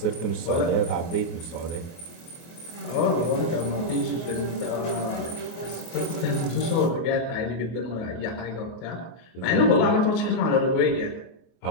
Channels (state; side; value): late; right; 24 ms